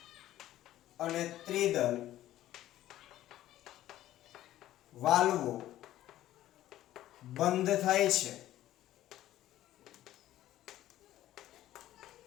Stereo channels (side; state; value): right; quieter; 13.8 dB